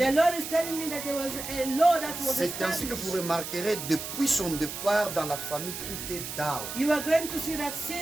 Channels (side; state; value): right; noise; hiss, 7 dB below the sound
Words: Lord is telling me that there was a law that was C'est ainsi que vous established. remarquerez, depuis son départ dans la famille, tout est down. You are going to see that